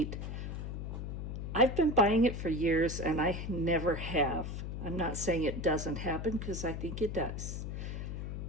I've been buying it for years and I never have. I'm not saying it doesn't happen because I think it does.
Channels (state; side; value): noise; left; hum, 5 dB below the sound